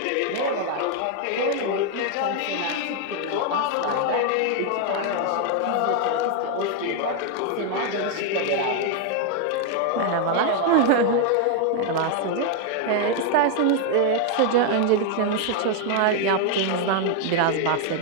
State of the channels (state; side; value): different; both; correlation 0.00